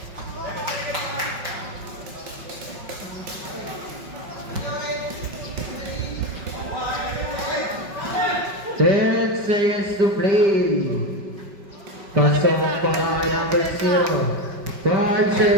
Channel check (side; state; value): left; late; 5.4 ms